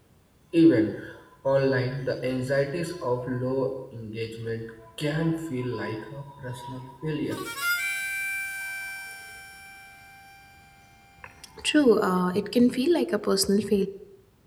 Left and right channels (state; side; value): identical; both; correlation 1.00